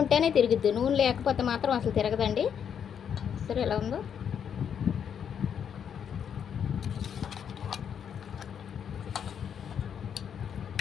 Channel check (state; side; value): quieter; right; 8.1 dB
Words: ఉంటేనే తిరుగుద్ది, నూనె లేకపోతే మాత్రం అసలు తిరగదండి. సరే ఎలా ఉందో?